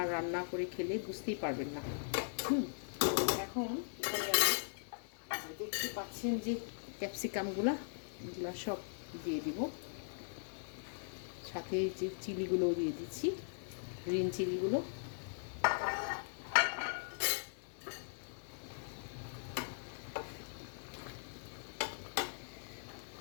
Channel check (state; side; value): silent; right; 51 dB below the other